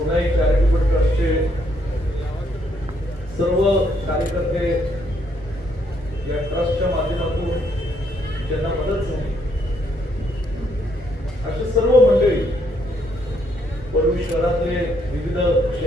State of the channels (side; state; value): both; normal; correlation 0.72